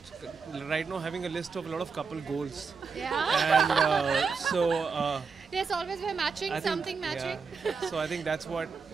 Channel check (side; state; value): left; quieter; 5.2 dB